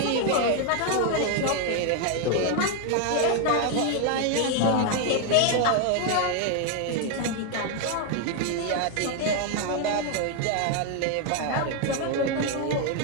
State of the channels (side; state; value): both; different; correlation 0.01